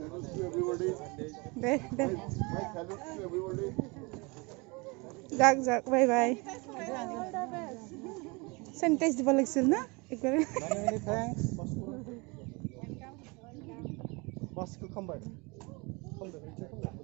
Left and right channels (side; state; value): left; quieter; 27.7 dB